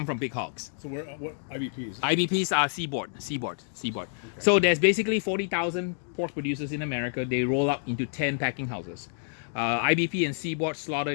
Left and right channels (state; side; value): silent; right; digital silence